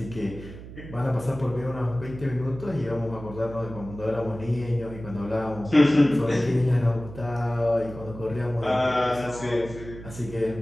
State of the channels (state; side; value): noise; right; hum, 13 dB below the sound